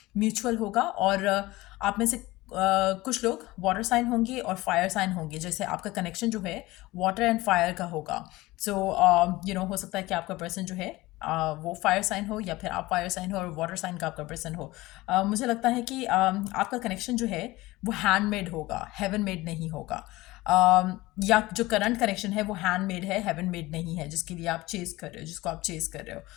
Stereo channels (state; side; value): quieter; right; 19.5 dB